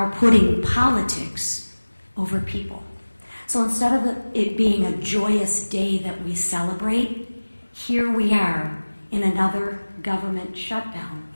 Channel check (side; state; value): both; inverted; correlation -1.00